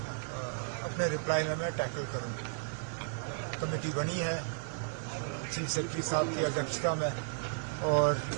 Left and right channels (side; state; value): left; silent; digital silence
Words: अपने रिप्लाई में मैं टैकल करूं। कमेटी बनी है चीफ सेक्रेटरी साहब की अध्यक्षता में और